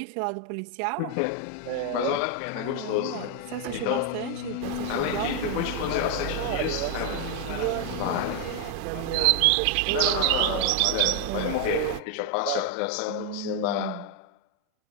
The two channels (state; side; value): different; both; correlation 0.00